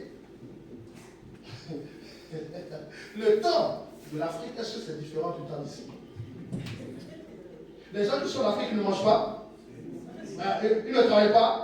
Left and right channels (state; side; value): identical; both; correlation 1.00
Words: Le temps de l'Afrique, est-ce que c'est différent du temps d'ici? Les gens qui sont en Afrique, ils ne mangent pas. Ils ne travaillent